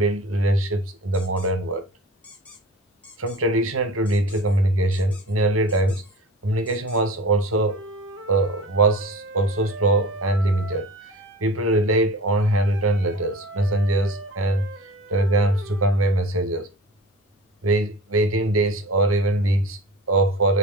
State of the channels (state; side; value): normal; both; correlation 0.37